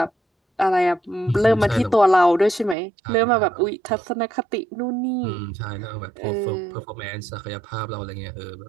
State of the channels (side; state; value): left; drops out; at 2.8 s